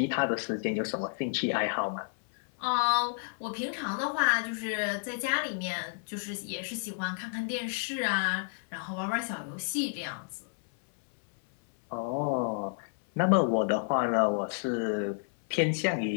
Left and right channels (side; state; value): right; silent; 57 dB below the other